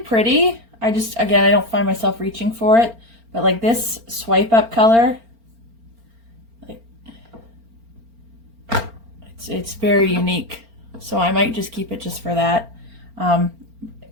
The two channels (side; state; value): left; late; 4.4 ms